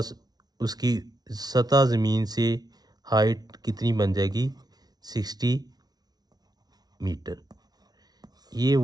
उसकी सतह ज़मीन से हाइट कितनी बन जाएगी, 60 मीटर। ये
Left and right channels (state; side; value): late; left; 0.19 ms